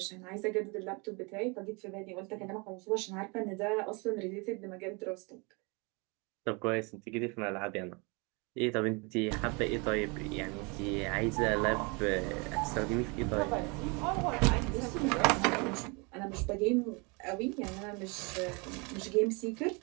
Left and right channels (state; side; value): quieter; left; 30.1 dB